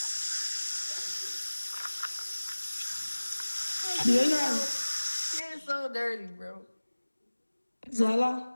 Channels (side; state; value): both; inverted; correlation -1.00